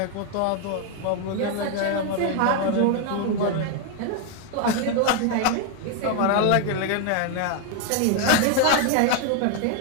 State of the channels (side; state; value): both; different; correlation 0.01